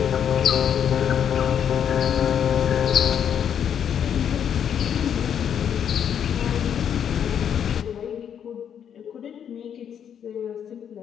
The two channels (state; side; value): quieter; right; 8.6 dB